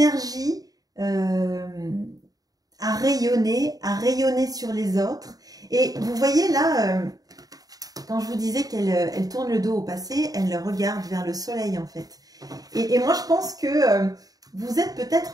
à rayonner sur les autres. Et vous voyez là, quand je vous disais qu'elle tourne le dos au passé, elle regarde vers le soleil en fait. Et moi je pense que vous êtes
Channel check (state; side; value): late; left; 0.18 ms